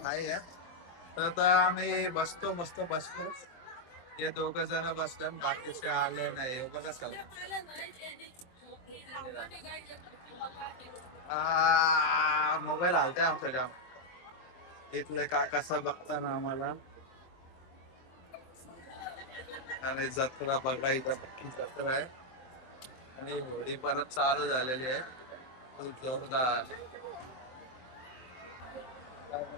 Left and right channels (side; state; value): right; late; 23 ms